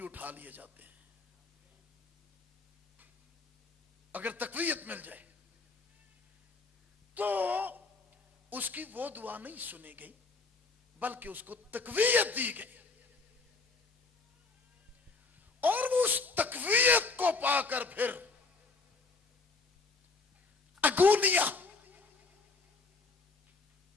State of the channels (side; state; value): right; quieter; 3.9 dB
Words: اٹھا لیے جاتے ہیں۔ اگر تقویت مل جائے تو اس کی وہ دعا نہیں سنی گئی، بلکہ اس کو تقویت دی گئی، اور وہ اس تقویت کو پا کر پھر اگونیا،